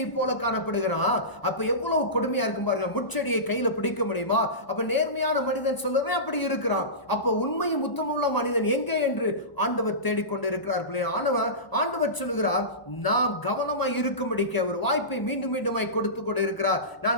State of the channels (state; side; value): late; right; 1.0 ms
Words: போல காணப்படுகிறான். அப்ப எவ்வளவு கொடுமையா இருக்கும் பாருங்க, முச்செடியை கையில பிடிக்க முடியுமா? அப்ப நேர்மையான மனிதன் சொல்றதே அப்படி இருக்கிறான். அப்ப உண்மையும் உத்தமுள்ள மனிதன் எங்கே என்று ஆண்டவர் தேடிக்கொண்டு இருக்கிறார். ஆண்டவர் சொல்லுகிறார், நாம் கவனமாய் இருக்கும்படிக்க ஒரு வாய்ப்பை மீண்டும் மீண்டுமாய் கொடுத்து கொண்டு இருக்கிறார்.